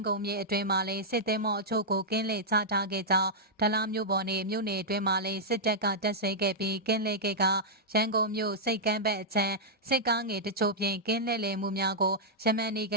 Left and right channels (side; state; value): both; normal; correlation -0.08